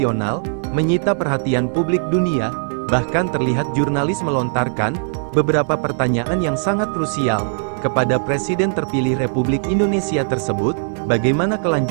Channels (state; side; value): silent; left; 66 dB below the other